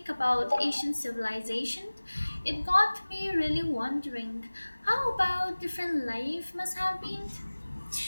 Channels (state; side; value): inverted; both; correlation -1.00